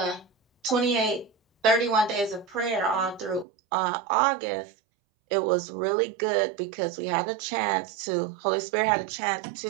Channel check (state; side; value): drops out; left; at 3.5 s